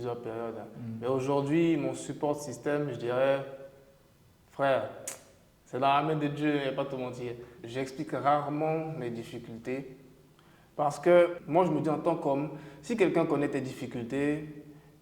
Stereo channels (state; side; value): identical; both; correlation 1.00